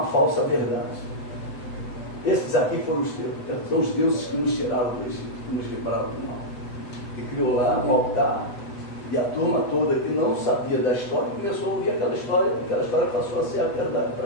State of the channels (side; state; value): right; late; 8.1 ms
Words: falsa verdade. Esses aqui foram são os deuses que nos tiraram do Egito, que nos livraram do mal. E criou lá um altar, e a turma toda que não sabia da história começou a ouvir aquela história passou a ser a verdade para